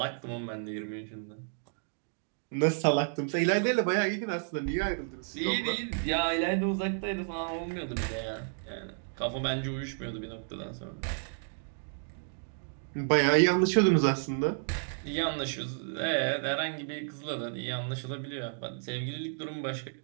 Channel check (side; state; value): left; silent; digital silence